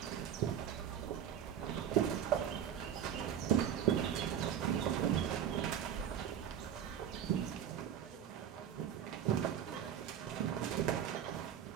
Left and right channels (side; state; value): left; quieter; 9.3 dB